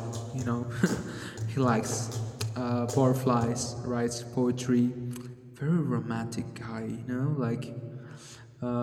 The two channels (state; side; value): identical; both; correlation 1.00